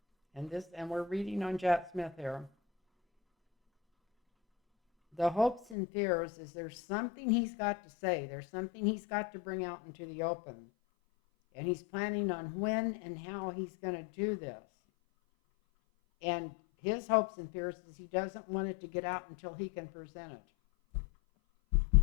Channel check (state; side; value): drops out; right; at 5.8 s